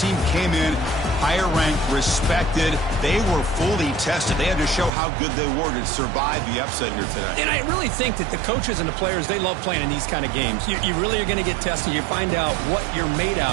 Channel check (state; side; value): drops out; left; at 4.9 s